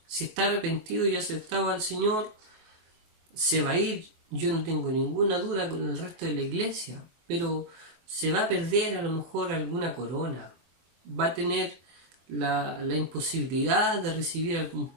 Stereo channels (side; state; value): left; late; 23 ms